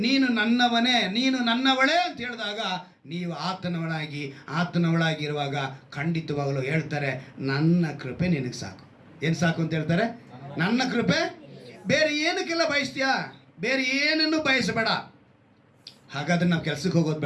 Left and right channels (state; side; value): identical; both; correlation 1.00